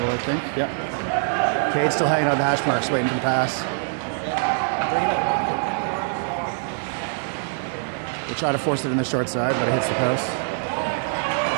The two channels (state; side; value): silent; left; digital silence